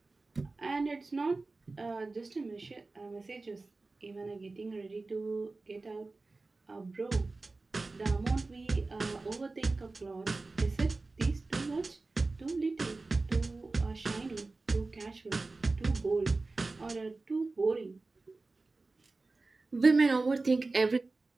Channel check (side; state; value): left; quieter; 3.5 dB